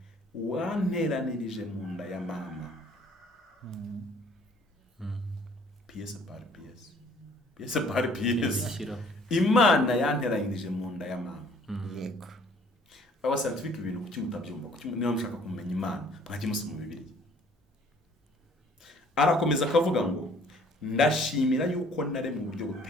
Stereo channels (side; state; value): both; normal; correlation 0.58